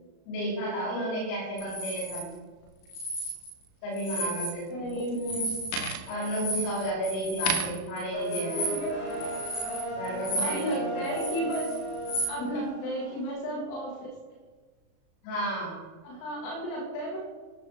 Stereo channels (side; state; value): right; late; 37 ms